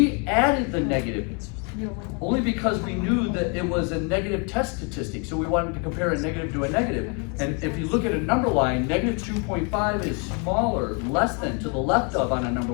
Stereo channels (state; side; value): quieter; right; 33.9 dB